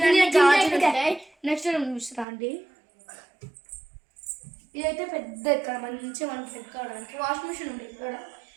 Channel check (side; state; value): left; drops out; at 2.2 s